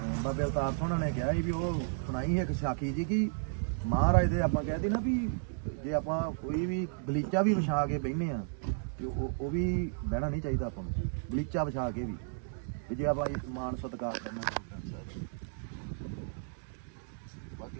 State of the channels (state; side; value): silent; left; digital silence